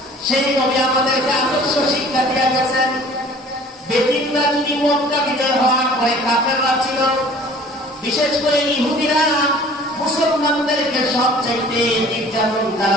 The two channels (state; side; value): normal; both; correlation 0.49